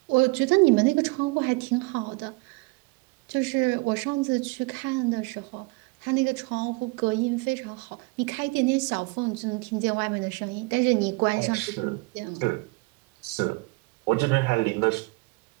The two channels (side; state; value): left; quieter; 26.7 dB